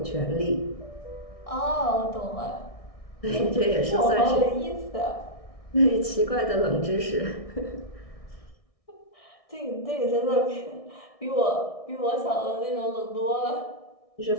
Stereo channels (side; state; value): right; late; 1.6 ms